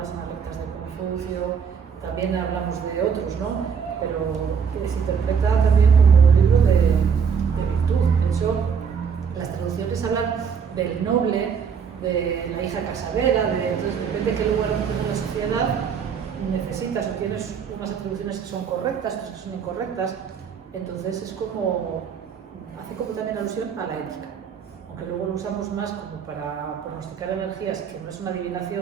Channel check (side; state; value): left; quieter; 6.6 dB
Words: analectas de Confucio, también hablamos de otros, ¿no? pero se interpreta también como un libro de virtud. De hecho, las traducciones hablan del noble, de la hija casadera, entonces depende de qué lugar ocupes en la sociedad, necesitas o tienes unas atribuciones que son correctas, otras que son incorrectas, entonces es como, hace como también alusión a la ética, aunque luego lo usamos más como para pronosticar energías, que no es una